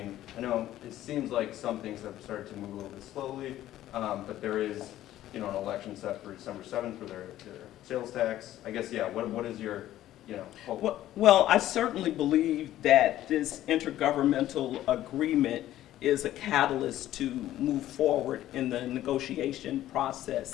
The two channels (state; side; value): quieter; right; 13.5 dB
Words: I know it seems like some things have started to move a little bit slowly, but there is, an election set for December 7th for their sales tax. I guess, what is your, hope? Well, I certainly believe that this intergovernmental agreement is a catalyst to move forward in the negotiation